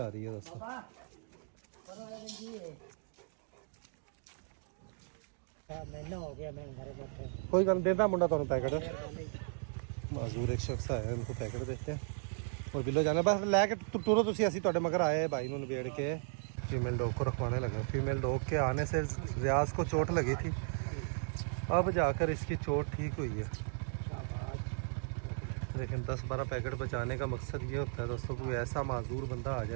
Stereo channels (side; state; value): left; silent; 54 dB below the other